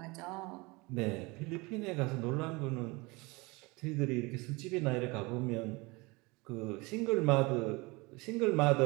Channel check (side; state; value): left; quieter; 25.2 dB